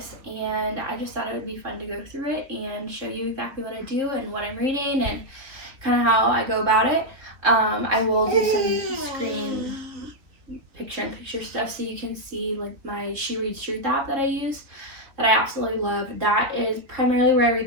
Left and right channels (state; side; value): late; left; 3.3 ms